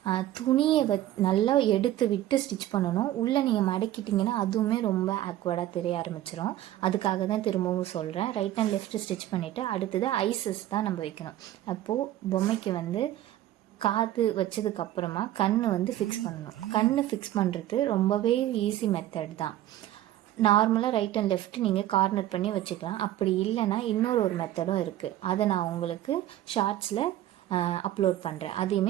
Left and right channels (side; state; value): left; quieter; 13.6 dB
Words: துணியை நல்லா எடுத்து விட்டு ஸ்டிச் பண்ணணும். உள்ளே நீங்கள் மடக்கிட்டிங்கன்னா அதுவுமே ரொம்ப ஆக்வர்டாக தெரிய ஆரம்பிச்சிடும். அதுக்காக தான் திரும்பவும் சொல்கிறேன். ரைட் அண்ட் லெஃப்ட் ஸ்டிச் பண்ணிவிட்டு அடுத்தது ஐசஸ் தான் நம்ம வைக்கணும். அப்போது பொம்மைக்கு காது வச்சதுக்கப்புறமா கண் ஃபிக்ஸ் பண்ணணும். கண் ஃபிக்ஸ் பண்ணுறது ரொம்பவே ஈஸி மெத்தட் தான். நார்மலாக ரைட் அண்ட் லெஃப்ட் நீங்கள் கார்னர் பண்ணி வச்சுக்கலாம். அப்படி இல்லைன்னா இன்னொரு மெத்தடும் இருக்குது. அதை நான் உங்களுக்கு ஷார்ட்ஸில் அப்லோட் பண்ணுறேன்.